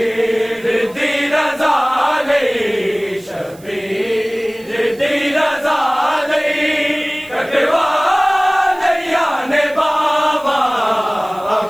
दी रज़ा लई शबीर दी रज़ा लई कटवाले याने बाबा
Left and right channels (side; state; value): right; noise; hiss, 25 dB below the sound